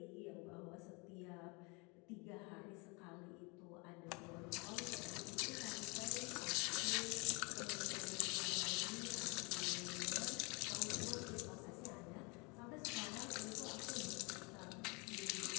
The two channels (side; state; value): right; quieter; 29.6 dB